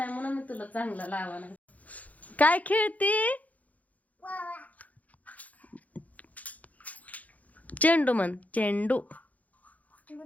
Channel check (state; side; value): late; right; 0.074 ms